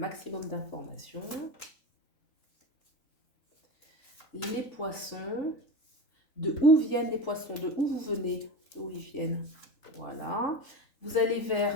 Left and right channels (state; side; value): late; right; 3.8 ms